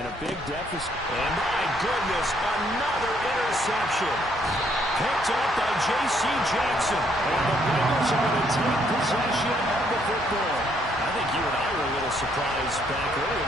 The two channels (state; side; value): normal; both; correlation 0.70